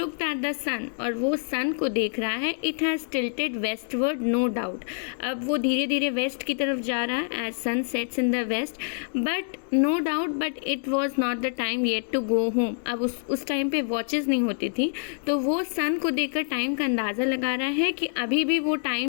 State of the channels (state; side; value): silent; right; digital silence